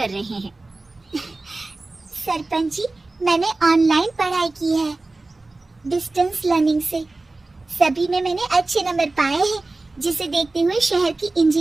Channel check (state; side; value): quieter; left; 3.2 dB